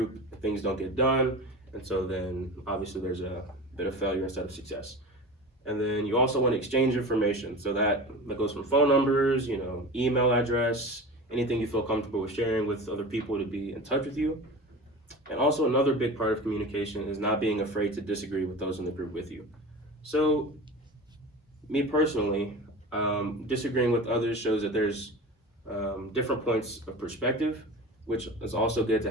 Things don't get done, and so then obviously there's a bit of failure instead of success. And then you also want to exchange information. So that goes from phone numbers, email address, anything you feel comfortable with sharing with other people to be in touch with you. And also another big part of communication is not being afraid to disagree with those in the group with you. So me personally, disagreeing with others shows that there's different points of perspective, which is also good to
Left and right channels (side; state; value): both; normal; correlation 0.32